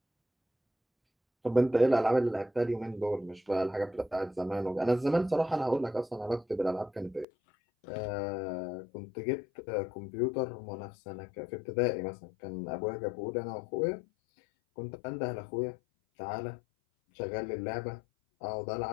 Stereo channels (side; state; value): right; drops out; at 7.2 s